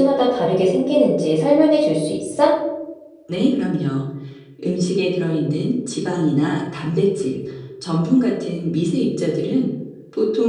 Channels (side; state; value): both; identical; correlation 1.00